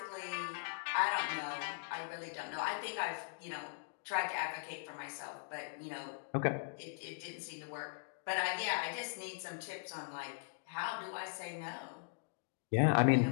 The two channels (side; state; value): right; silent; digital silence